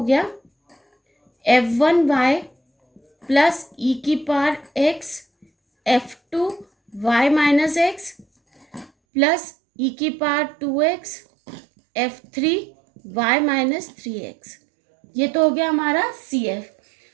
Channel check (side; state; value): left; drops out; at 8.9 s